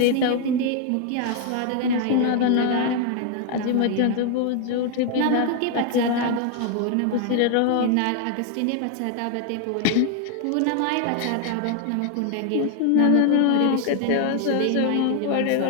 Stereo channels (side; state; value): both; different; correlation 0.00